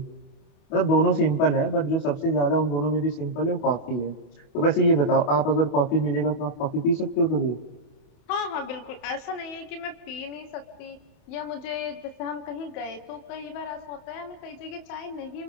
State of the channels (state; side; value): late; right; 28 ms